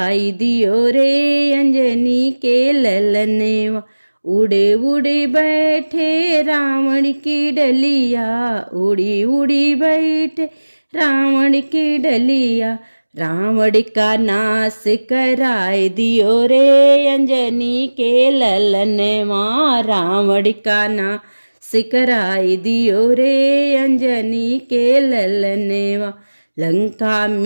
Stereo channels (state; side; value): inverted; both; correlation -1.00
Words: दियो रे अंजनी के ललने माँ। उड़े उड़े बैठे रावण की डलिया, उड़ी उड़ी बैठे रावण की डलिया। रावण का नाश कराए दियो रे अंजनी के ललने माँ। रावण का नाश कराए दियो रे अंजनी के ललने माँ। लंका